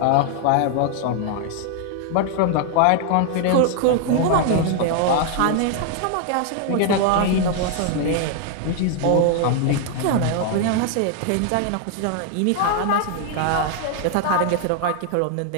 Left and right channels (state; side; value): different; both; correlation 0.00